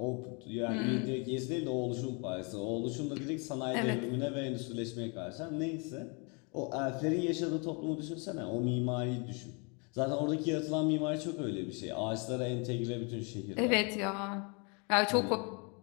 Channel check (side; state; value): right; quieter; 33.8 dB